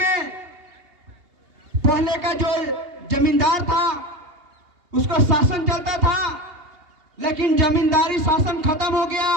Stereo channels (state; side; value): late; left; 2.8 ms